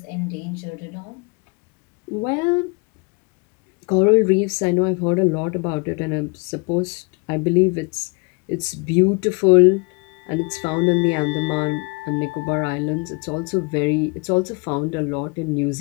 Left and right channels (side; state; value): right; quieter; 30.9 dB